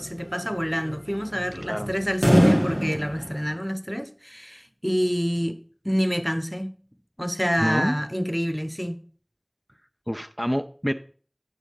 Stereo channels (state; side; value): identical; both; correlation 1.00